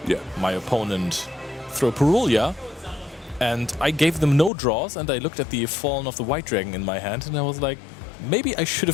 Yeah. My opponent threw Purulia, and I gave them no draws, and I looked at the Fallen of the White Dragon in my hand, and I was like, maybe I should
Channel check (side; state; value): right; drops out; at 4.5 s